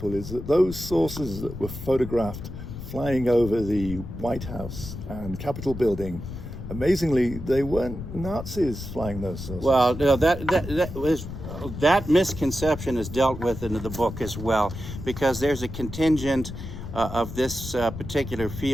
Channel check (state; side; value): noise; left; rumble, 9 dB below the sound